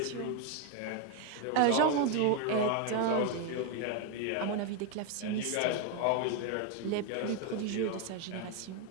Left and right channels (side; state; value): both; different; correlation 0.01